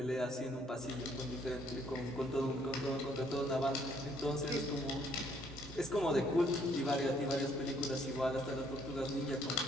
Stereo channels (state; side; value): normal; both; correlation 0.67